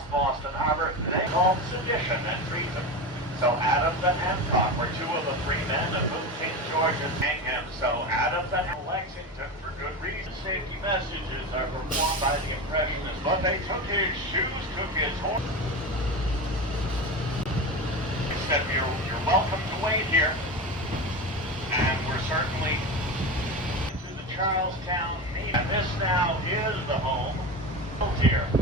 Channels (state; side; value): normal; both; correlation 0.24